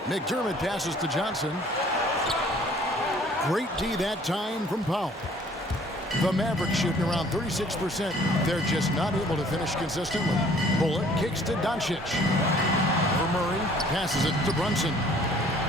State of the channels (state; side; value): normal; both; correlation 0.56